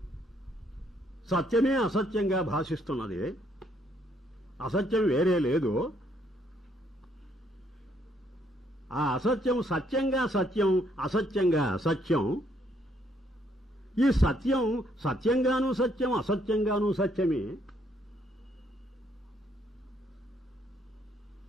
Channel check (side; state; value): both; normal; correlation 0.70